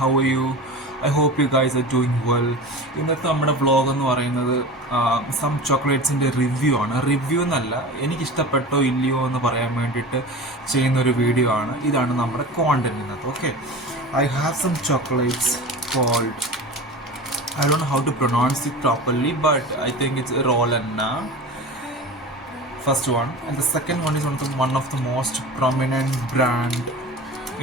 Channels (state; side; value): normal; both; correlation 0.33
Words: are you? I hope you guys are doing well. ഇന്നത്തെ നമ്മുടെ vlog എന്ന് പറയുന്നത് some ചോക്ലേറ്റ്സിൻ്റെ review ആണ്. Review എന്നല്ല, എനിക്കിഷ്ടപ്പെട്ടോ ഇല്ലയോ എന്ന് പറയാൻ വേണ്ടിയിട്ട് ചെയ്യുന്ന ഒരു വീഡിയോ ആണ്. ഇതാണ് നമ്മുടെ കോണ്ടന്റ് ഇന്നത്തെ. Okay, I have some chocolates cold, I don't know how to pronounce it properly, but I think it's Rolanna. First one, and the second one is one of the most prominent brand,